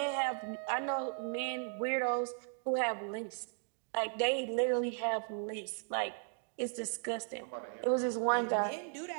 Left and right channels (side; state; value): left; silent; 54 dB below the other